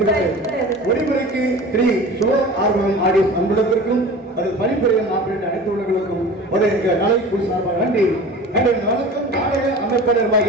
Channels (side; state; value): both; normal; correlation 0.38